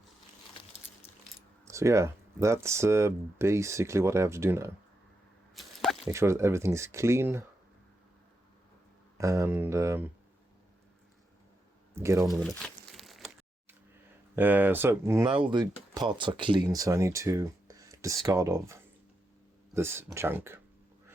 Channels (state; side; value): normal; both; correlation 0.85